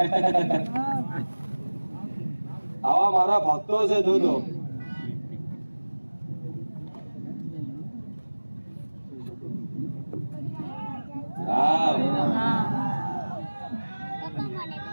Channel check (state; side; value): inverted; both; correlation -1.00